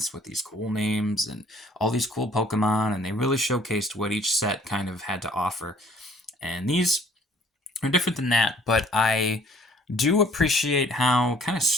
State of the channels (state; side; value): normal; both; correlation 0.58